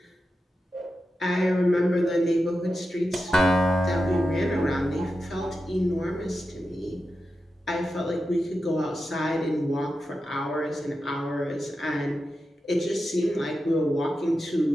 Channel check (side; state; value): both; normal; correlation 0.90